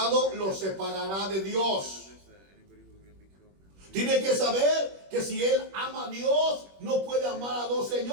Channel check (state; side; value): late; left; 21 ms